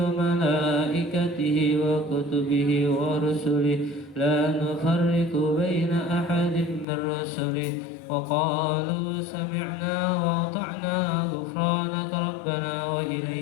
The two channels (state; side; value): drops out; right; at 6.9 s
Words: وملائكته وكتبه ورسله لا نفرق بين أحد من رسله وقالوا سمعنا وأطعنا غفرانك ربنا